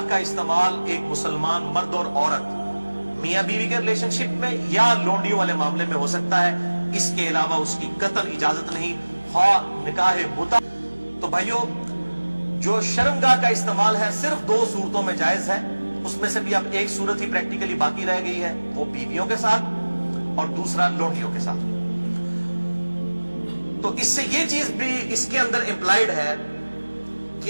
کا استعمال ایک مسلمان مرد اور عورت میاں بیوی کے ریلیشن شپ میں یا لونڈیوں والے معاملے میں ہو سکتا ہے، اس کے علاوہ اس کی قطعاً اجازت نہیں، خواہ نکاح متع۔ تو بھائیو، جو شرمگاہ کا استعمال ہے صرف 2 صورتوں میں جائز ہے، اس میں سے بھی اب ایک صورت ہی پریکٹیکلی باقی رہ گئی ہے، وہ بیویوں کے ساتھ اور دوسرا لونڈیوں کے ساتھ۔ تو اس سے یہ چیز بھی اس کے اندر امپلائیڈ ہے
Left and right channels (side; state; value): both; inverted; correlation -1.00